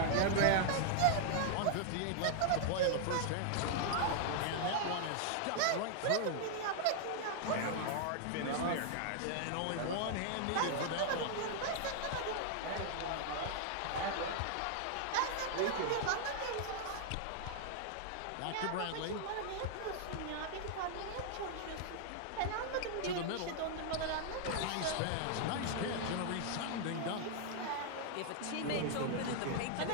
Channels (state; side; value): different; both; correlation 0.00